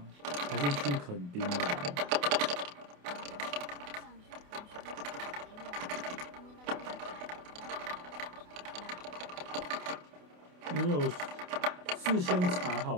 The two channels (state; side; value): late; left; 28 ms